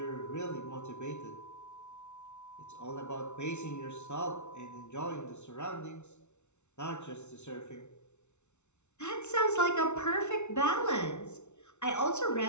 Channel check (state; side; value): late; right; 0.82 ms